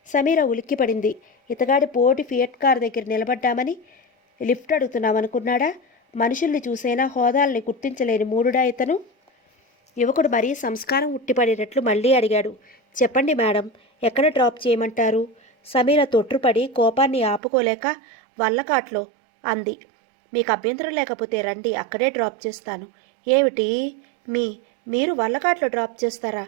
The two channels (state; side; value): drops out; left; at 17.4 s